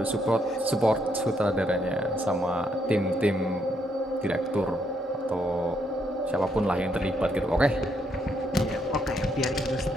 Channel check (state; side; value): normal; both; correlation 0.75